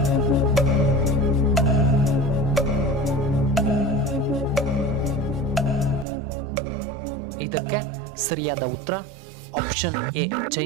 ಇದಕ್ಕೆ ಸರಿಯಾದ ಉತ್ತರ ಆಪ್ಷನ್ ಎ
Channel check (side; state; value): left; drops out; at 6.1 s